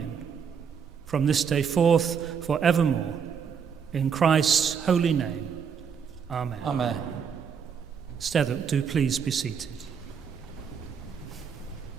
from this day forth forevermore, in Christ's holy name. Amen. Amen. Steddock, do please be seated.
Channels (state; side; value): quieter; left; 6.9 dB